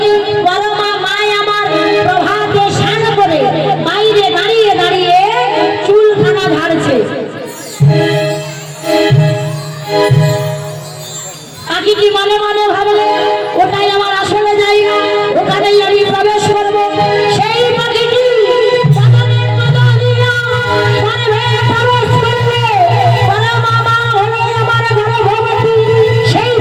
পরমা মায় আমার প্রভাতে স্নান করে বাইরে দাঁড়িয়ে দাঁড়িয়ে চুলখানা ঝাড়ছে। পাখিটি মনে মনে ভাবলে ওটাই আমার আসলে জায়গা, ওখানেই আমি প্রবেশ করবো। সেই পাখিটি বাগানের মতো দিয়া গর্ভে প্রবেশ করলে পরমা মা হলো আমার গর্ভবতী। সেই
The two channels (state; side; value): identical; both; correlation 1.00